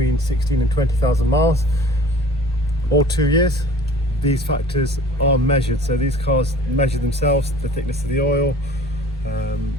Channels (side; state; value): both; normal; correlation 0.47